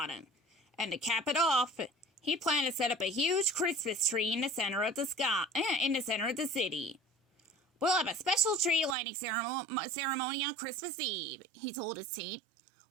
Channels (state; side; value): drops out; left; at 9.0 s